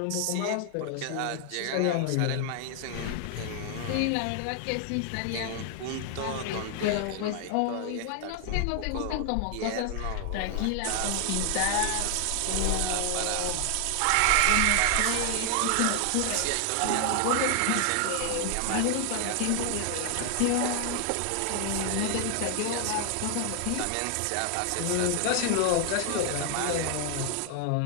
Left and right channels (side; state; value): both; different; correlation 0.00